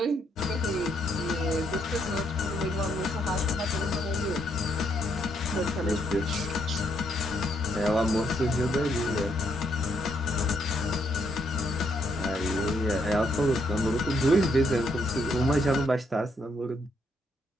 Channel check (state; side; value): normal; both; correlation 0.74